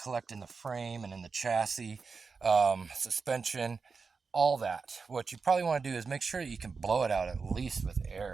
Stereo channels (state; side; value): quieter; left; 4.9 dB